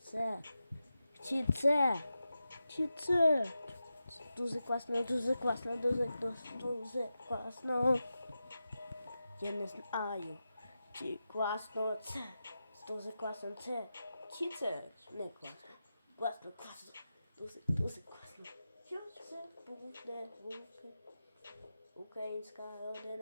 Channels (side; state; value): both; inverted; correlation -0.91